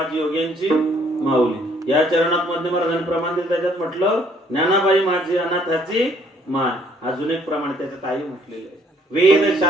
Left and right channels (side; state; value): both; normal; correlation 0.64